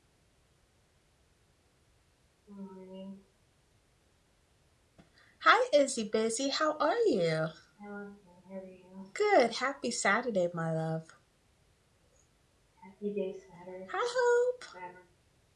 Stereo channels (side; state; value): both; identical; correlation 1.00